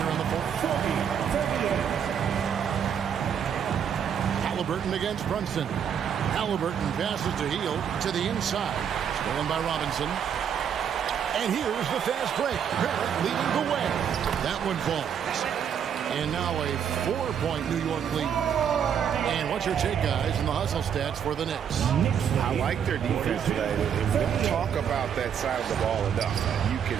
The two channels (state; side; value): quieter; left; 8.2 dB